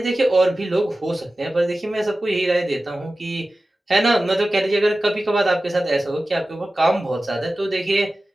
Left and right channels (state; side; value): normal; both; correlation 0.95